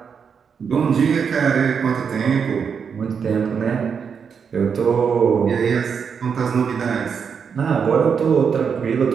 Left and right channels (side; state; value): left; quieter; 6.5 dB